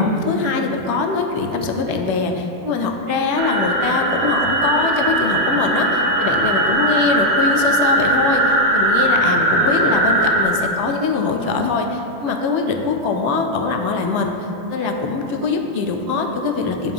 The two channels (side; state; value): left; late; 21 ms